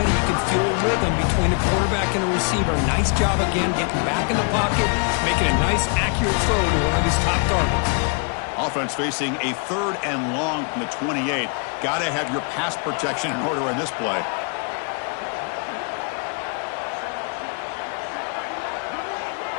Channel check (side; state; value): right; quieter; 38.5 dB